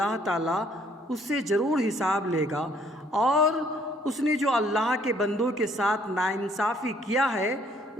تعالیٰ اس سے ضرور حساب لے گا، اور اس نے جو اللہ کے بندوں کے ساتھ ناانصافی کیا ہے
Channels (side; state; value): both; normal; correlation 0.63